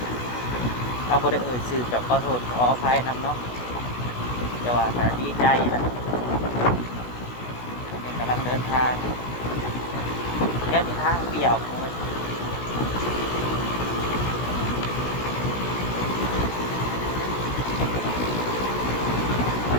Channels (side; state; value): right; late; 16 ms